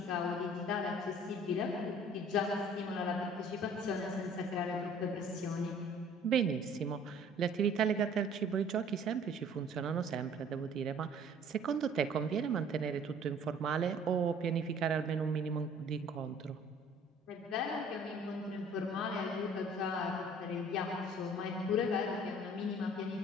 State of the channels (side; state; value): both; normal; correlation 0.52